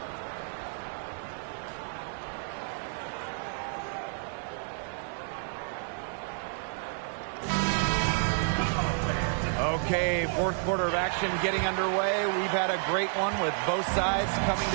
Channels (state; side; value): silent; left; 58 dB below the other